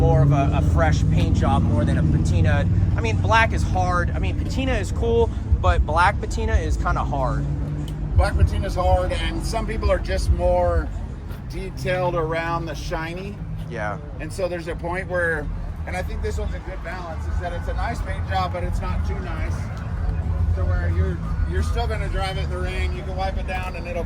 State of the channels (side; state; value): both; identical; correlation 1.00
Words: of a fresh paint job more than a patina. I mean, black is hard. I mean, patina is cool, but black patina is kind of hard. Black patina is hard, and some people are just more detailed around the shiny. Yeah. And so there's a point where, and I think this one's a good balance, is that it's a nice paint job, but it's not too nice. To where you're still going to drive it in the rain. You can wipe it down and it'll